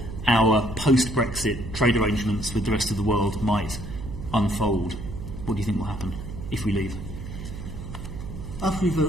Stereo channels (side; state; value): right; noise; hum, 9 dB below the sound